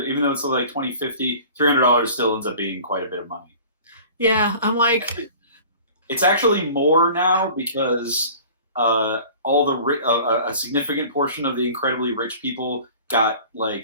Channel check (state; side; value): inverted; both; correlation -0.44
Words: though it's like 2050, $300 still ends up being quite a bit of money. yeah, I'm like It's actually more now because a significant portion of the incredibly rich people got